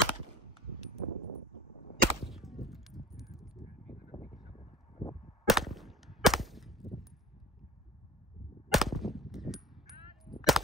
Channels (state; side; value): normal; both; correlation 0.43